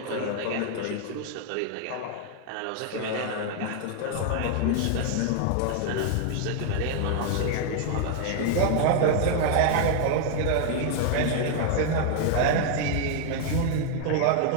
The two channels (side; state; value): both; different; correlation 0.00